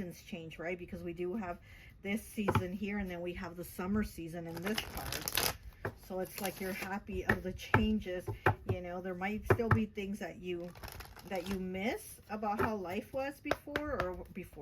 change, right? Because we do have this season here, and then we have the summer season in this card. So it's like you're happy of the changes. You know, there might still be things that you miss about how life was before, or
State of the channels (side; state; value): both; identical; correlation 1.00